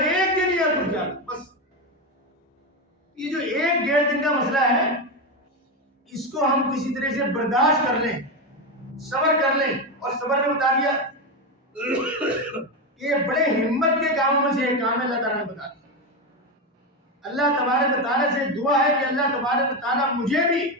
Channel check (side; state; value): both; normal; correlation 0.13